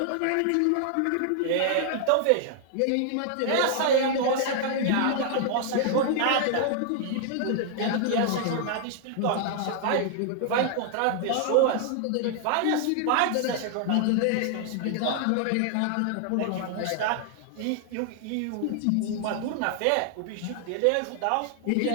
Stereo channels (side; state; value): both; different; correlation 0.00